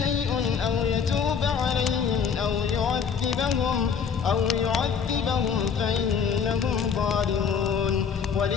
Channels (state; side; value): quieter; right; 6.6 dB